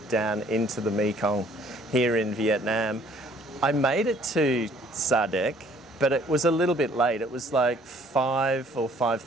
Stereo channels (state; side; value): normal; both; correlation 0.59